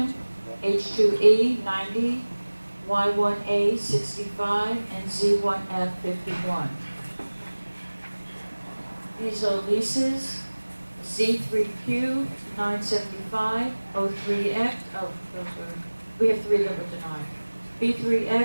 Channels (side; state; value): both; inverted; correlation -1.00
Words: H2E, 90, Y1A, 65, and Z1F, 51. These are leases. Z3Q, 975, O3X, oh, those were, we have 3 that were denied.